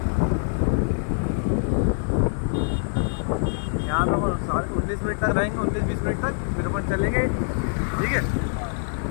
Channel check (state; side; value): silent; right; digital silence